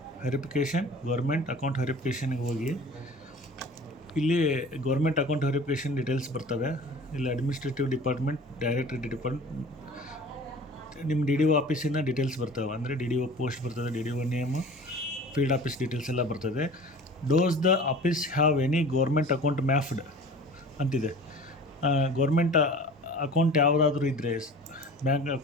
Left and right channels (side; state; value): both; normal; correlation 0.42